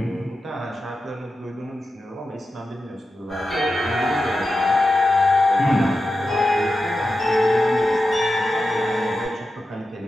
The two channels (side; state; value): both; normal; correlation 0.91